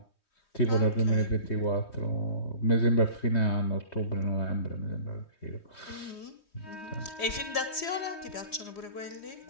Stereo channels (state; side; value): late; right; 3.2 ms